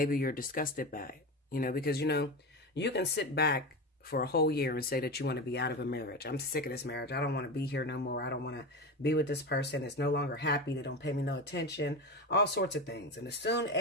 you're disgusted by it. You know, because, you know, you can sit back for a whole year and say that you want to be out of a marriage. I'm sick of this marriage. I don't want to be here no more. I don't want to be with this person. It's no longer happy. They don't pay me no attention. All sorts of things. And as soon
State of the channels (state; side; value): normal; both; correlation 0.22